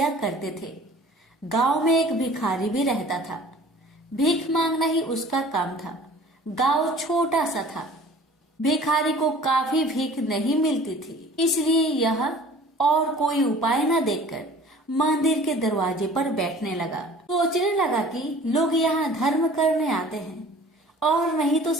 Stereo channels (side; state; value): both; normal; correlation 0.47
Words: करते थे। गांव में एक भिखारी भी रहता था। भीख मांगना ही उसका काम था। गांव छोटा सा था। भिखारी को काफी भीख नहीं मिलती थी, इसलिए यह और कोई उपाय न देखकर मंदिर के दरवाजे पर बैठने लगा। सोचने लगा कि लोग यहाँ धर्म करने आते हैं और नहीं तो